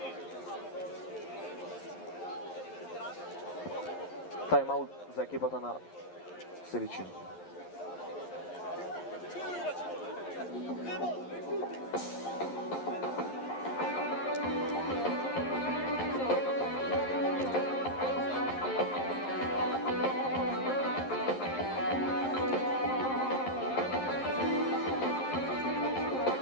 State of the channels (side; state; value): right; late; 11 ms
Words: Тайм-аут за екипата на Сиричино.